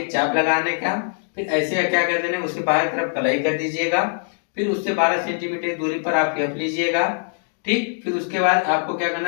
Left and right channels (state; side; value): silent; right; 64 dB below the other